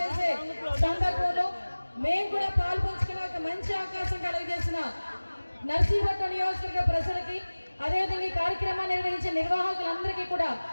సందర్భంలో మేము కూడా పాల్పంచుకునే ఒక మంచి అవకాశం కలిగజేసిన నర్సీపట్నం నియోజకవర్గ ప్రజలకి, అదేవిధంగా ఈ కార్యక్రమాన్ని నిర్వహించే నిర్వాహకులందరికీ కూడా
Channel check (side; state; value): both; inverted; correlation -1.00